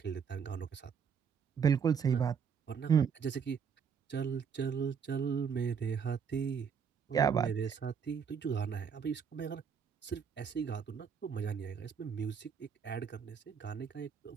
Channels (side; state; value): left; quieter; 6.8 dB